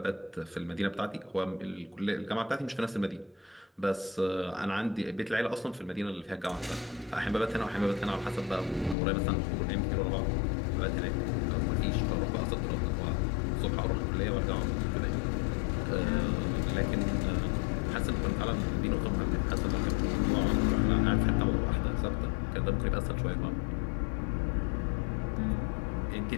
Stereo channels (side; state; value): right; drops out; at 9.0 s